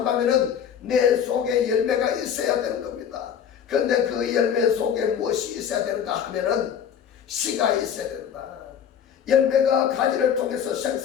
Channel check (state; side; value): quieter; right; 8.4 dB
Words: 내 속에 열매가 있어야 되는 겁니다. 그런데 그 열매 속에 무엇이 있어야 되는가 하면은 씨가 있어야 된다. 열매가 가지를 통해서